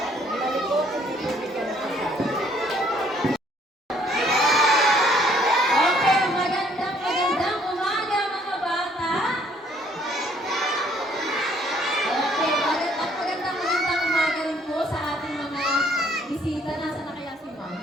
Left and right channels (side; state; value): both; normal; correlation 0.63